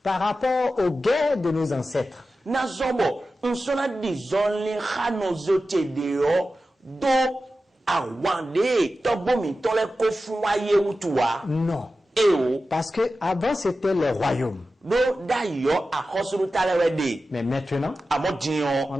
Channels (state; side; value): normal; both; correlation 0.93